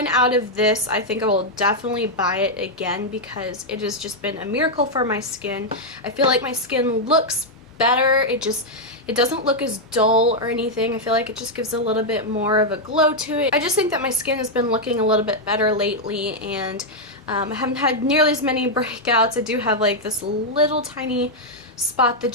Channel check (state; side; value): normal; both; correlation -0.02